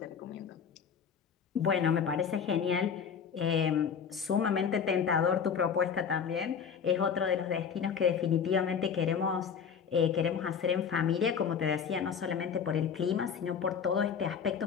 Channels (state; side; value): quieter; right; 7.0 dB